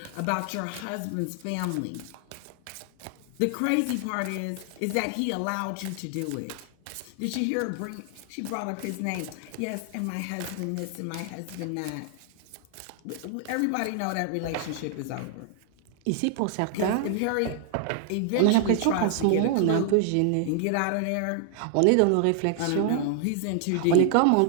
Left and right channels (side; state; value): both; different; correlation 0.00